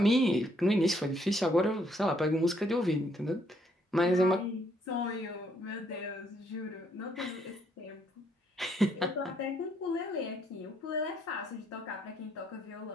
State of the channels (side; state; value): both; normal; correlation 0.70